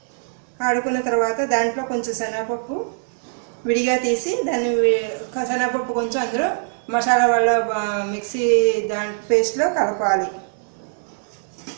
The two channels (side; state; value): left; silent; 64 dB below the other